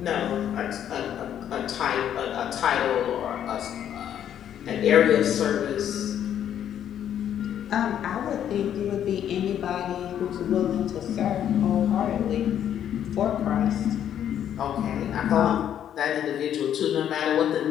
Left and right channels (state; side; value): quieter; right; 10.0 dB